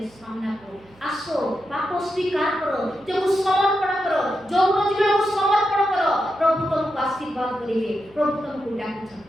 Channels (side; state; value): right; noise; hum, 28 dB below the sound